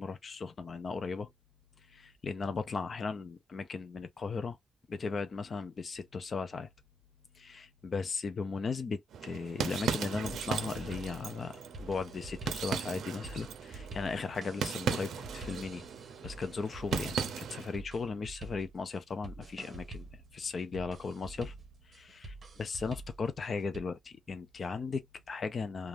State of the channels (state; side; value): normal; both; correlation 0.79